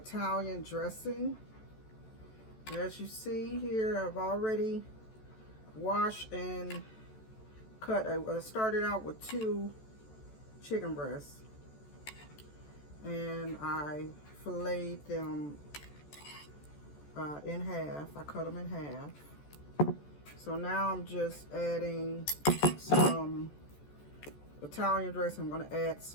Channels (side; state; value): right; late; 14 ms